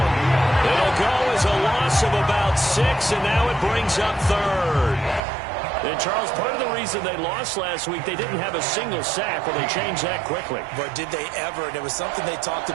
It'll go as a loss of about 6, and now it brings up 3rd. And, Charles, part of the reason they lost last week, they didn't have a single sack. Well, they changed that quickly. But did they ever? And it was something they talked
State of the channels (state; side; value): drops out; left; at 5.2 s